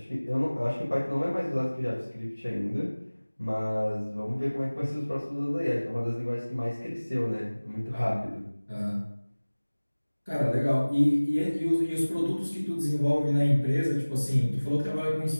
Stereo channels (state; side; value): inverted; both; correlation -1.00